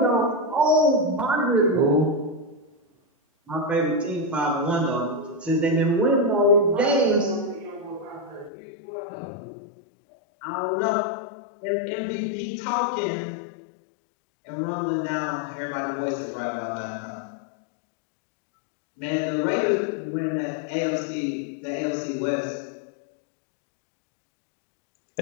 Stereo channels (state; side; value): drops out; right; at 8.5 s